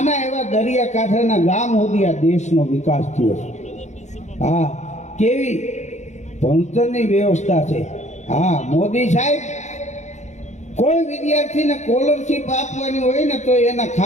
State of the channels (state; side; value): late; right; 0.34 ms